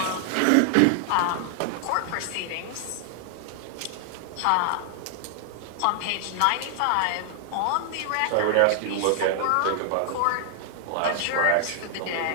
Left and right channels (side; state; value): both; different; correlation 0.00